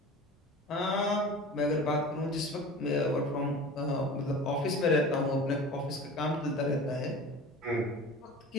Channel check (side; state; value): both; normal; correlation 0.38